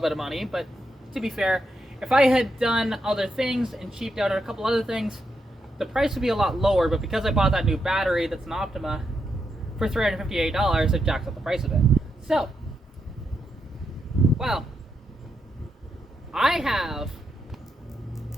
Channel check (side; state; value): both; normal; correlation 0.82